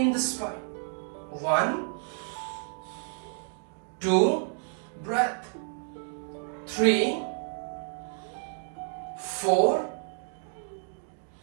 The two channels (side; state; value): left; silent; 58 dB below the other